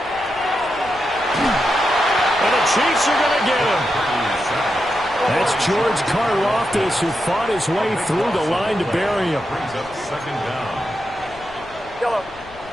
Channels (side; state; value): left; noise; rumble, 21 dB below the sound